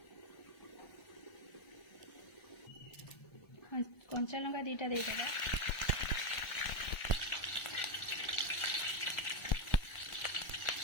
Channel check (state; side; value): late; right; 1.4 ms